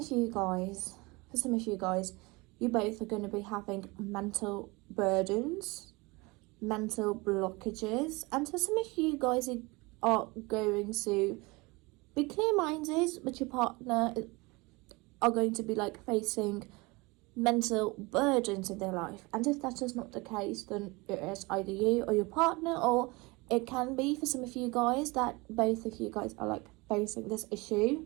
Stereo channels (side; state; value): left; quieter; 24.9 dB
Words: you guys, you both are going to be having mental burdens, mental blockages, and for some of you guys, you are going to be clear-minded, but your partner are going to be like facing mental burdens in their life. And if that is not the case, then it is either you or your partner, or it can be for some of you guys that both of you guys are like facing this issue.